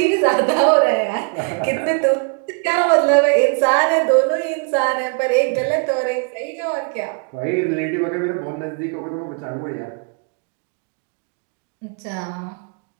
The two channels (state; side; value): quieter; left; 38.3 dB